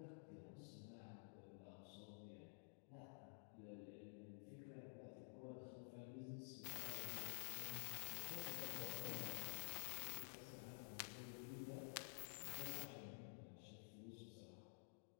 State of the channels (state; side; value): silent; right; digital silence